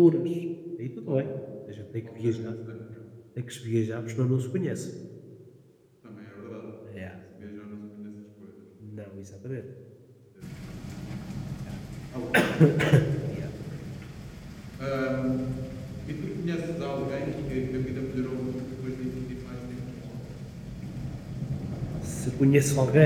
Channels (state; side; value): identical; both; correlation 1.00